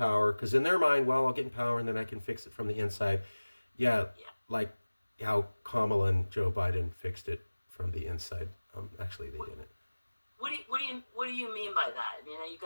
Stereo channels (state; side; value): inverted; both; correlation -1.00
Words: because in their mind, well, I'll get in power and then I can fix it from the inside. Like how Kamala and Joe Biden fixed it from the inside. Actually, they didn't. What do you mean by that? I mean, you